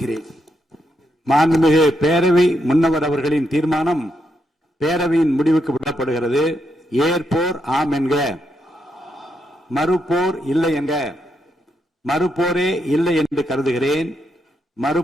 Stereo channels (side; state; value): both; normal; correlation 0.80